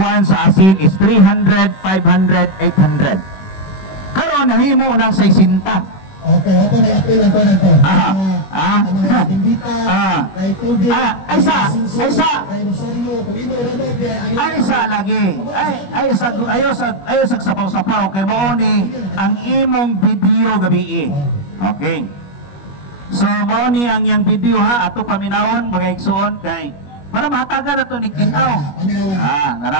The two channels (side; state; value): right; late; 21 ms